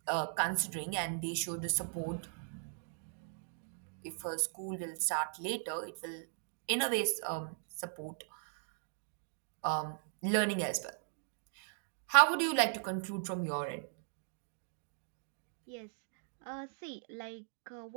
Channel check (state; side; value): silent; left; digital silence